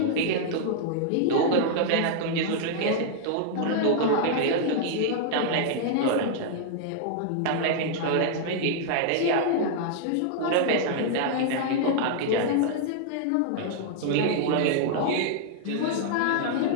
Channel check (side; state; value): both; different; correlation -0.01